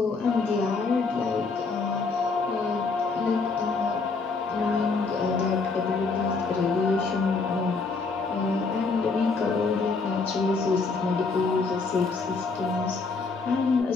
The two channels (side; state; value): right; quieter; 4.3 dB